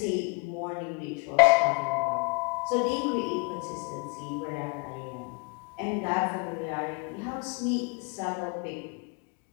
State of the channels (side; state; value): right; quieter; 33.1 dB